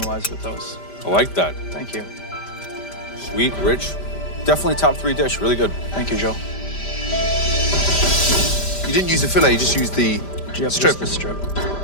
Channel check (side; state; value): right; late; 5.1 ms